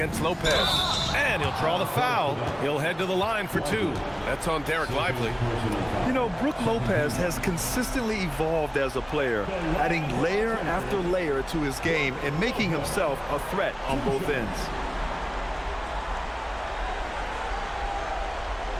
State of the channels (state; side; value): identical; both; correlation 1.00